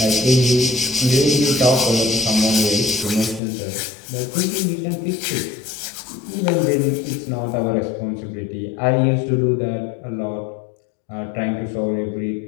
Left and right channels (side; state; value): right; drops out; at 3.4 s